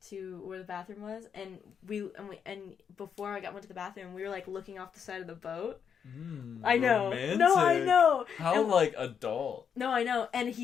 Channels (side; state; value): right; quieter; 7.4 dB